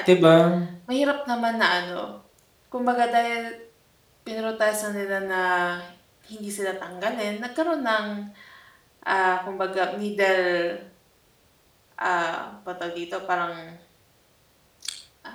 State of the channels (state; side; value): identical; both; correlation 1.00